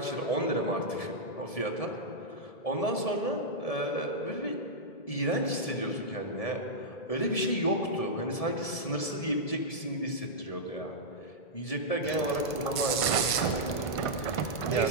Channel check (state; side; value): late; right; 1.5 ms